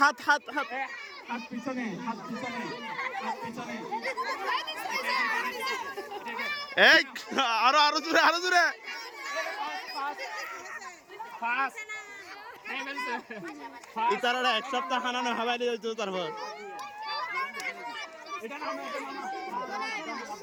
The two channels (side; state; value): both; identical; correlation 1.00